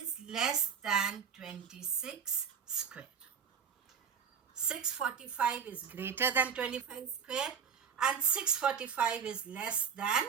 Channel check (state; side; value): quieter; left; 7.1 dB